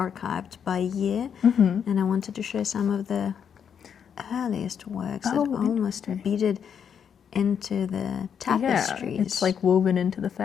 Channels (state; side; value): quieter; right; 7.7 dB